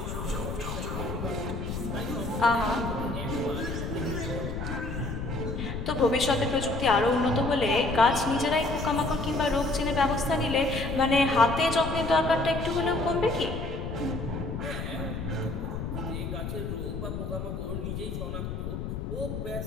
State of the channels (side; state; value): left; noise; rumble, 5 dB below the sound